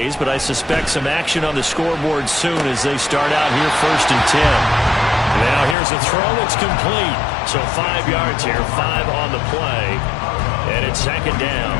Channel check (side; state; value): right; drops out; at 5.8 s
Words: but I suspect some action on the scoreboard soon as they start out here first and 10. Now here's a throw. It's complete. So 5 yards here, 5 on the play, and it's second down.